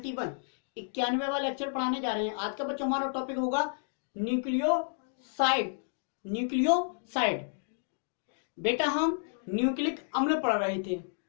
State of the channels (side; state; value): right; silent; digital silence